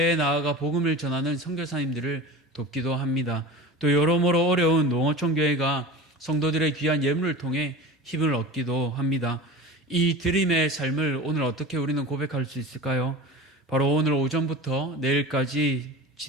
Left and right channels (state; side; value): normal; both; correlation 0.33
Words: 나아가 복음을 전하는 선교사님들을 돕기도 합니다. 또 여러모로 어려운 농어촌 교회가 성도들의 귀한 예물을 통해 힘을 얻기도 합니다. 이 드림의 삶을 오늘 어떻게 우리는 고백할 수 있을까요? 바로 오늘 오전부터 내일까지